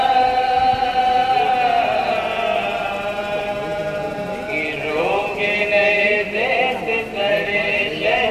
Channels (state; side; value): identical; both; correlation 1.00